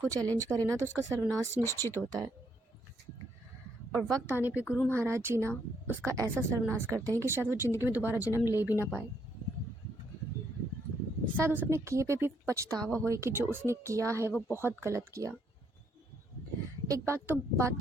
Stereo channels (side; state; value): both; normal; correlation 0.72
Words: चैलेंज करे ना तो उसका सर्वनाश निश्चित होता है, और वक्त आने पे गुरु महाराज जी ना उसका ऐसा सर्वनाश करते हैं कि शायद वो ज़िंदगी में दोबारा जन्म ले भी ना पाए। शायद उस अपने किए पे भी पछतावा होए कि जो उसने किया है वो बहुत गलत किया। एक बात